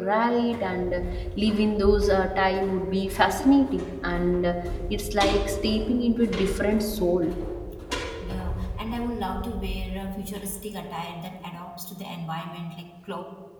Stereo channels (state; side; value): identical; both; correlation 1.00